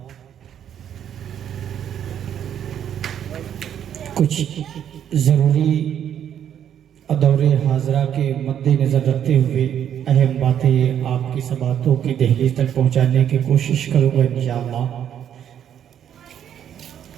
کچھ ضروری دور حاضرہ کے مد نظر رکھتے ہوئے اہم باتیں آپ کی سماعتوں کی دہلیز تک پہنچانے کی کوشش کروں گا انشاءاللہ۔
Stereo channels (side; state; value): left; quieter; 9.5 dB